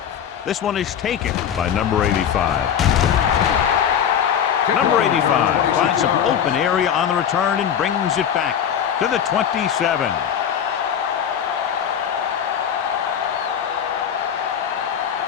This one is taken by number 85. Number 85 finds some open area on the return and brings it back to the 27.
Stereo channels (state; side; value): quieter; right; 8.7 dB